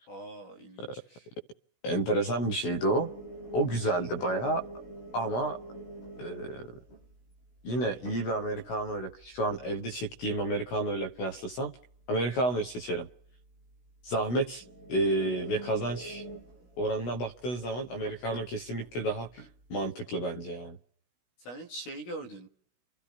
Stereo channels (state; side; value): late; right; 16 ms